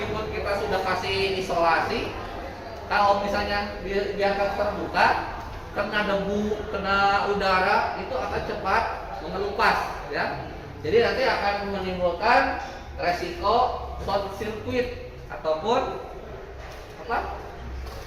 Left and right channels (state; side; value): identical; both; correlation 1.00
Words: kita sudah kasih isolasi, kalau misalnya biarkan terbuka, kena debu, kena udara, itu akan cepat mengelupas, ya. Jadi nanti akan menimbulkan resiko short circuit ataupun apa?